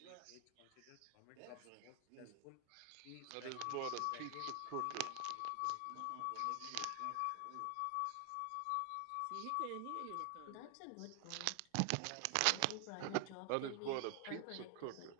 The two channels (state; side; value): different; both; correlation 0.00